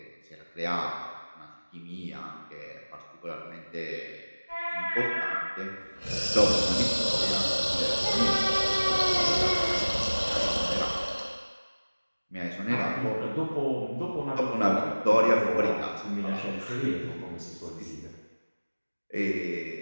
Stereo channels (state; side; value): inverted; both; correlation -1.00